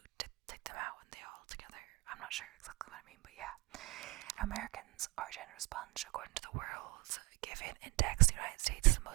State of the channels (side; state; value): left; quieter; 23.6 dB